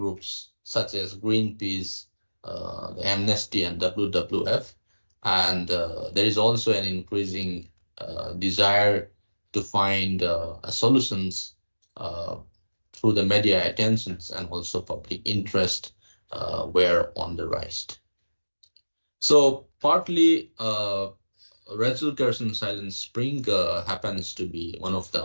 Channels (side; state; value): both; inverted; correlation -1.00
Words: such as Greenpeace, the Amnesty, and WWF, and there is also an increasing desire to find solutions through the media attentions, and also public interest were on the rise. So partly Rachel Carson Silent Spring happens to be one of the